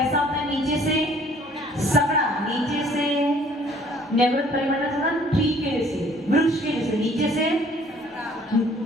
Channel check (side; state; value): both; normal; correlation 0.57